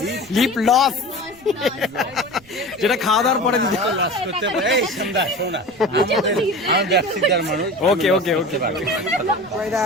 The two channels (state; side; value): noise; right; rumble, 26 dB below the sound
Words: lip gloss, যেটা খাওয়া দাওয়ার পরে দিতে। আমি ব্যবসাদার মানুষ। ওকে ওকে ওকে।